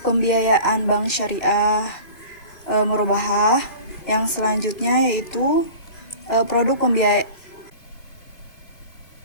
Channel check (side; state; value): right; late; 2.4 ms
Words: pembiayaan bank syariah murabahah. Yang selanjutnya yaitu produk pembiayaan.